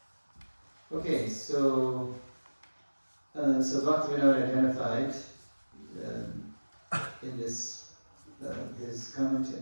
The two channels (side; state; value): both; inverted; correlation -1.00